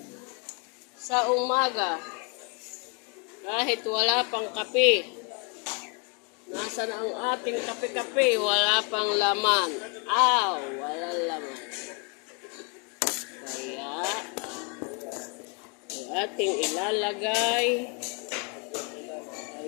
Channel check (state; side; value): quieter; right; 35.2 dB